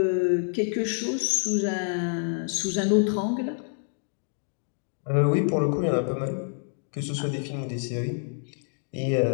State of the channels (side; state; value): right; silent; 60 dB below the other